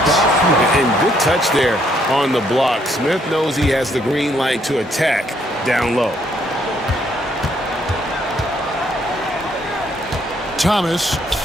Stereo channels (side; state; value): both; normal; correlation 0.69